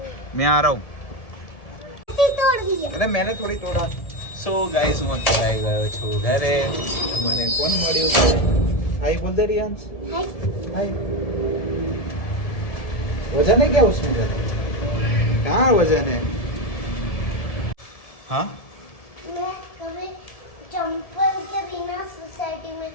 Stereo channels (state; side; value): late; right; 1.7 ms